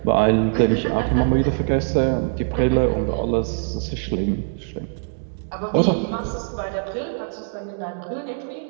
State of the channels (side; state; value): left; silent; digital silence